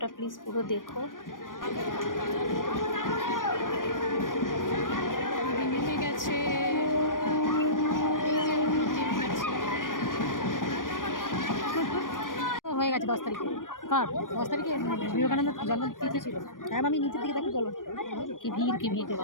প্লিজ পুরো দেখো। নেমে গেছে, হয়ে গেছে 10 তারিখে। কার 10 তারিখে? বিবেকানন্দ জন্মতিথি ছিল। হ্যাঁ, আমি নিচের দিকে দেখি, চলো। কি ভিড়, কি ভিড় রে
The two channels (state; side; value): late; right; 0.90 ms